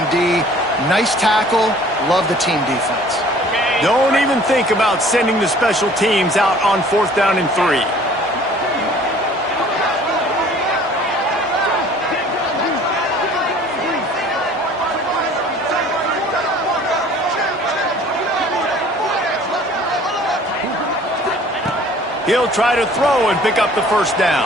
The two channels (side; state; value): both; normal; correlation 0.51